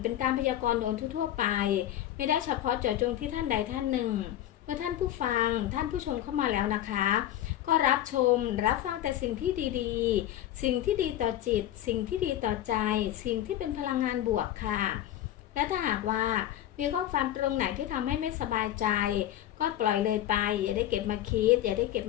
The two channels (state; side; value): quieter; right; 12.5 dB